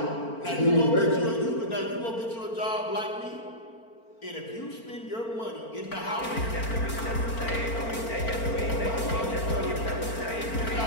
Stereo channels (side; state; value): right; late; 4.4 ms